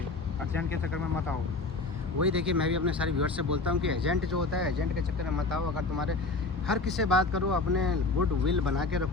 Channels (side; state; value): right; quieter; 3.6 dB